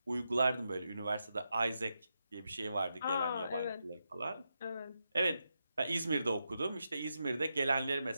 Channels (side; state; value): both; inverted; correlation -0.86